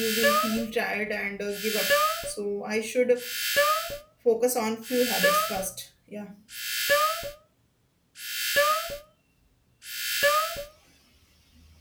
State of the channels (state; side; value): identical; both; correlation 1.00